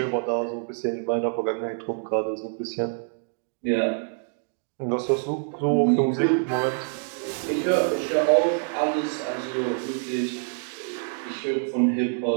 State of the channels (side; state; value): left; silent; 59 dB below the other